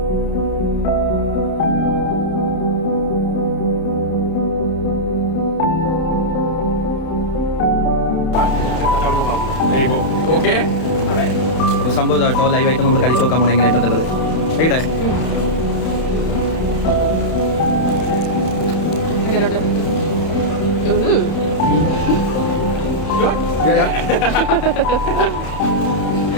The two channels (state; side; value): late; right; 31 ms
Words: അപ്പോൾ സംഭവം കേട്ടോ, ലൈവായിട്ട് നമ്മൾ കഴിച്ചു നോക്കാൻ പോകണം എങ്ങനെയായിട്ടുള്ളത്. എവിടെ